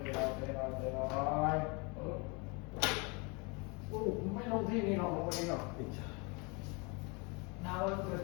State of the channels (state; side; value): quieter; right; 30.3 dB